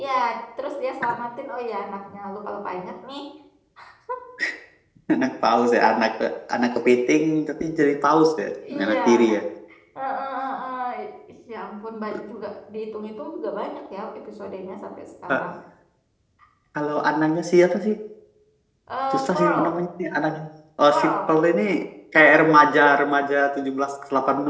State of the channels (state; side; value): identical; both; correlation 1.00